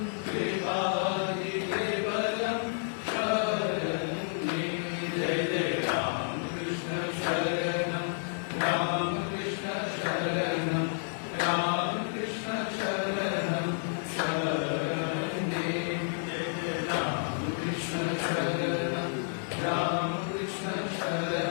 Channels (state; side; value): silent; right; digital silence